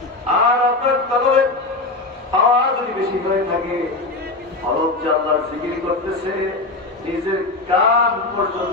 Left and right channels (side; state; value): right; quieter; 3.1 dB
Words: আর আপনার তলবে পাওয়ার যদি বেশি হয়ে থাকে, অলপ জানলার জিকির করতেছে, নিজের কান